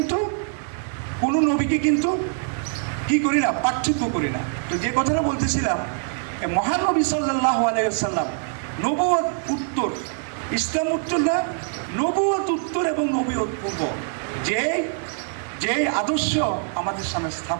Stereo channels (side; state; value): left; silent; 56 dB below the other